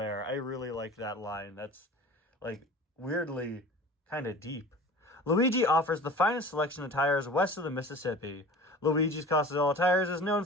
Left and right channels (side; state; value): both; normal; correlation 0.39